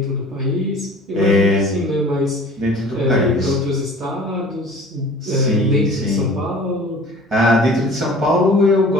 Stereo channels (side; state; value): both; normal; correlation 0.46